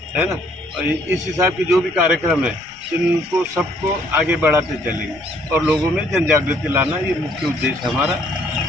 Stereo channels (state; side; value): noise; left; rumble, 28 dB below the sound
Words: है ना, इस हिसाब के जो भी कार्यक्रम है, इनको सबको आगे बढ़ाते चलेंगे और लोगों में जन जागृति लाना ये मुख्य उद्देश्य हमारा।